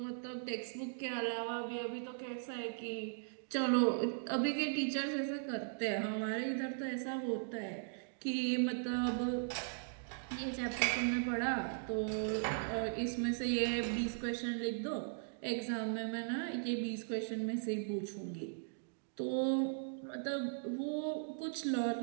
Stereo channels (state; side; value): silent; left; digital silence